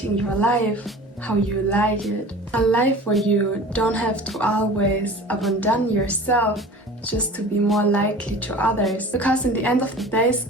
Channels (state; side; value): normal; both; correlation 0.40